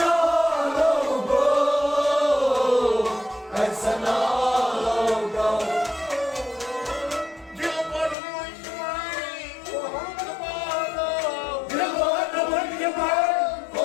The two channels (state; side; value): drops out; right; at 8.2 s